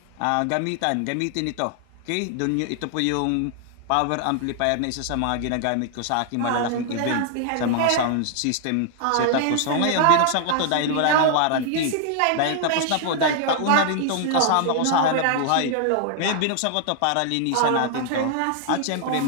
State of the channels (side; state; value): both; different; correlation 0.00